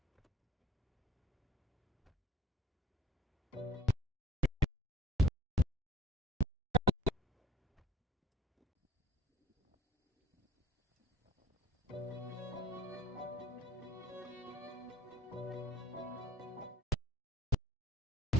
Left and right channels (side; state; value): both; normal; correlation 0.53